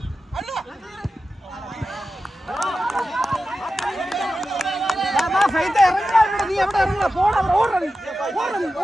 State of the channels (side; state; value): both; normal; correlation 0.93